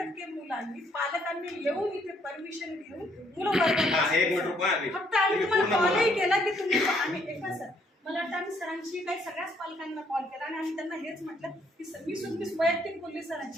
मुलांनी, पालकांनी येऊन इथे परमिशन घेऊन मुलं वर्गात. फक्त आम्ही तुम्हाला कॉलही केला की तुम्ही आम्ही एका सर, मला वाटतं आम्ही सरांशी काही सगळ्याच पालकांना कॉल केला आणि आम्ही त्यांना हेच म्हटलं की सर, मी वैयक्तिक बोलली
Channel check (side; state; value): both; normal; correlation 0.68